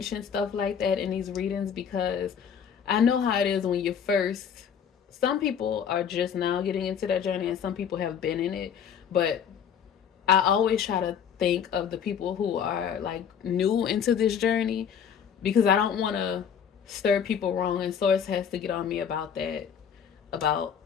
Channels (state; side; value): quieter; right; 7.8 dB